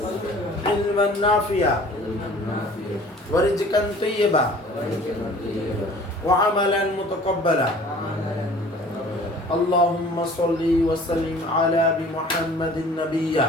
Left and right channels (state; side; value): normal; both; correlation 0.49